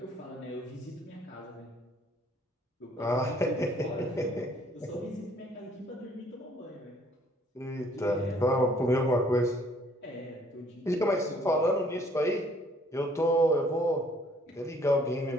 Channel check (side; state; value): both; normal; correlation 0.61